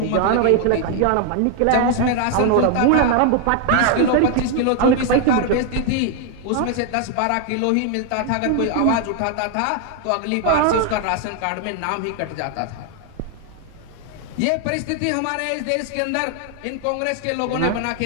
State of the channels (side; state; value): both; different; correlation 0.00